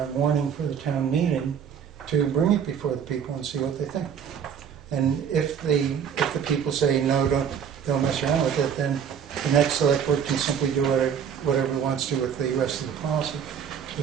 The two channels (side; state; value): left; quieter; 7.8 dB